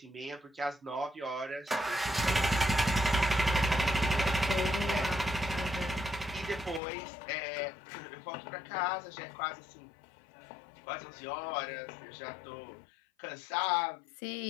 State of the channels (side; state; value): right; drops out; at 6.8 s